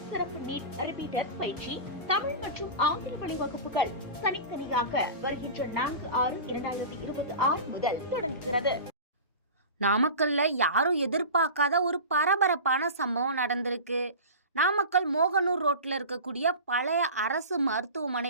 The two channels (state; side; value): inverted; both; correlation -0.31